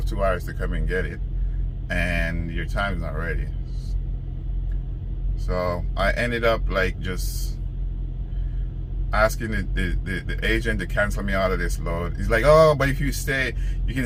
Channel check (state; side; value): identical; both; correlation 1.00